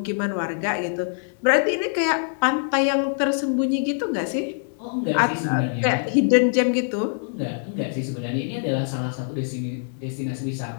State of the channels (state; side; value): silent; right; digital silence